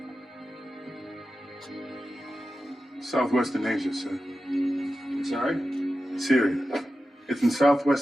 Southwestern Asia, sir. Sorry? Syria. It's in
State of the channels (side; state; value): both; normal; correlation 0.93